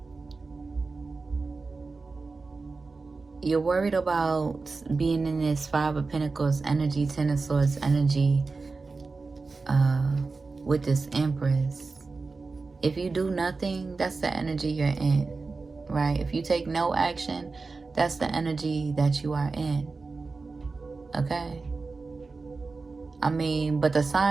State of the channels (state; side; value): quieter; left; 4.0 dB